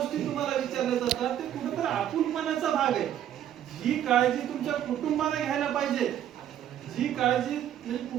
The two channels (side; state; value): left; quieter; 10.8 dB